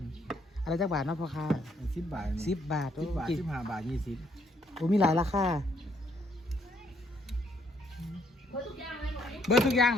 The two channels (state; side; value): normal; both; correlation 0.69